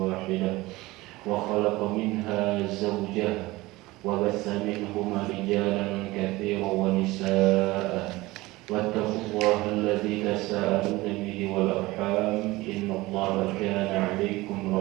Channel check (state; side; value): quieter; left; 20.0 dB